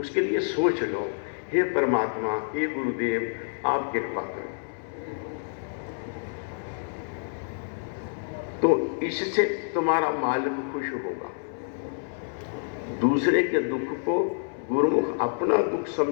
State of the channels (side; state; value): right; silent; 60 dB below the other